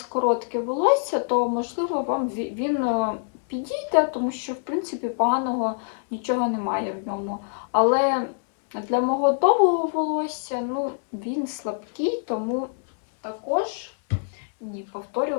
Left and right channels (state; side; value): silent; right; digital silence